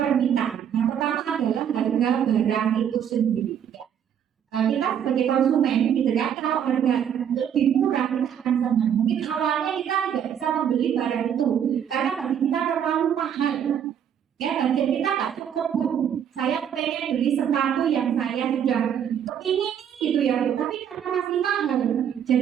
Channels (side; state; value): left; quieter; 8.8 dB